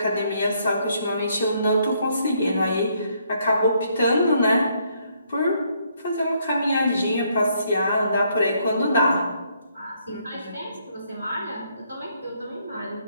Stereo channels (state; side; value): inverted; both; correlation -0.71